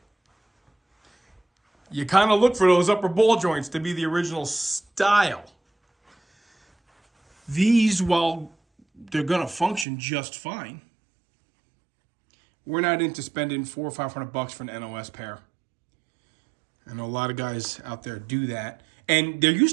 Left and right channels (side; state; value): left; drops out; at 9.9 s